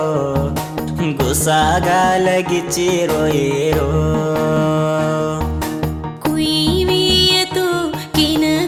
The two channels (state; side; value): identical; both; correlation 1.00